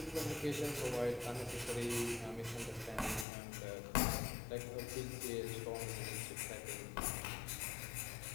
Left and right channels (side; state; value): right; drops out; at 3.2 s